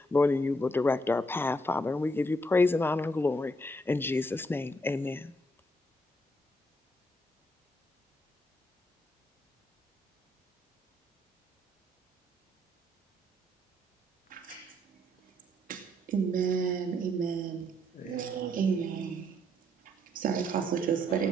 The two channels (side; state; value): both; normal; correlation 0.73